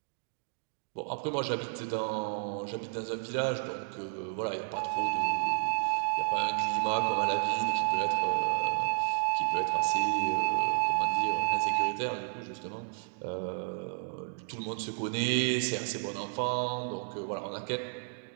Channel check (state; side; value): silent; left; digital silence